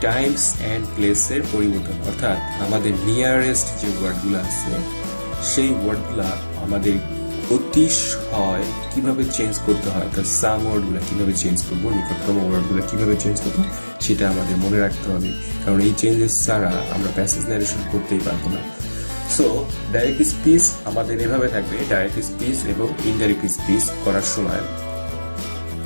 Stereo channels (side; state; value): both; inverted; correlation -1.00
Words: টাইমস অ্যান্ড প্লেসের পরিবর্তন, অর্থাৎ আমাদের নিয়ারেস্ট যে ওয়ার্ডগুলো আছে সেই ওয়ার্ডগুলা আমাদের অতিশয় কিভাবে চেঞ্জ করতে হয়, তার সাম ওয়ার্ডগুলো কিভাবে চেঞ্জ করবো, নিকটতম ওয়ার্ডগুলো কিভাবে চেঞ্জ করবো সেটা আমাদের মনে রাখতে হবে, কারণ এই চেঞ্জেস ছাড়া আমরা প্যাসেজ ন্যারেশন করতেই পারবো না। সো ডাইরেক্ট স্পিচ আমাদের এভাবে থাকবে, ডাইরেক্ট স্পিচ এবং ইনডাইরেক্ট স্পিচ করার সময়